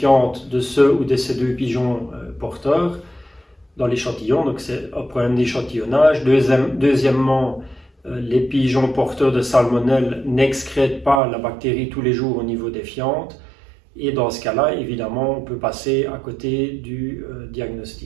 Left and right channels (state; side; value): drops out; left; at 11.2 s